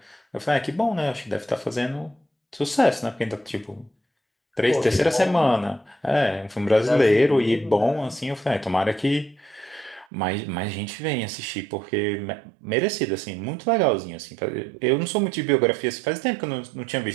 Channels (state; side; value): drops out; left; at 10.1 s